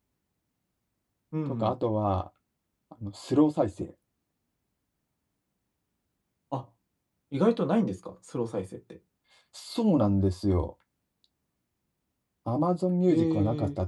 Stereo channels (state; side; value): identical; both; correlation 1.00